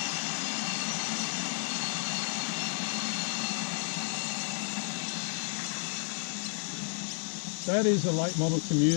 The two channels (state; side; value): silent; right; digital silence